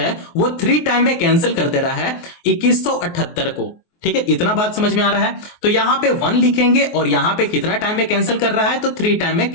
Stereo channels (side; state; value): right; late; 23 ms